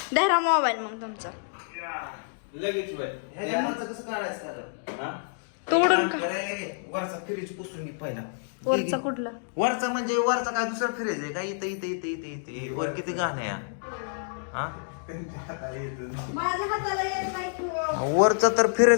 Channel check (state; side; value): silent; right; digital silence